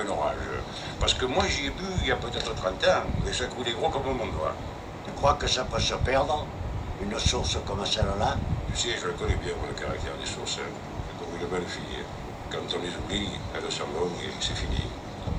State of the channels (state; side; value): identical; both; correlation 1.00